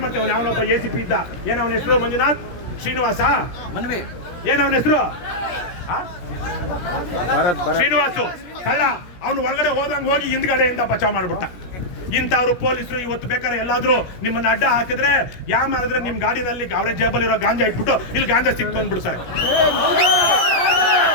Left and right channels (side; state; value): right; late; 17 ms